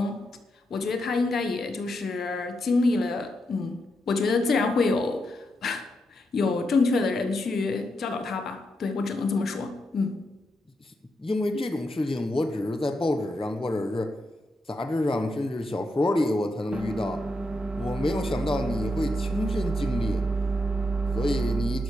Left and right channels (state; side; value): normal; both; correlation 0.84